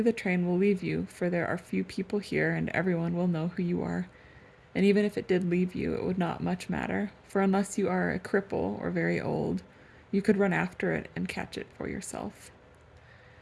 the train will leave you, for there are few people here and everyone will know who you are. And even if it did leave you, it would not much matter, for unless you are a cripple or very old, you could run after it and catch it for yourself.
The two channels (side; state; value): both; identical; correlation 1.00